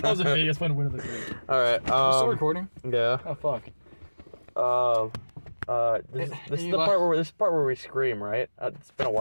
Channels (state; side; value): inverted; both; correlation -1.00